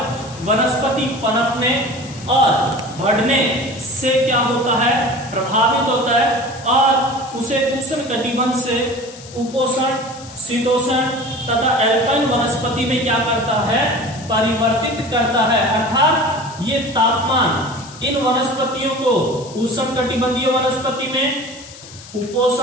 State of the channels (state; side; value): noise; left; hiss, 18 dB below the sound